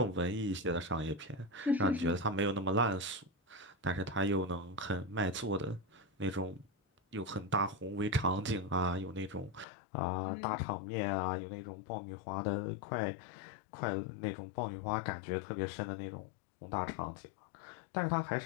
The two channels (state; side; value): drops out; right; at 9.7 s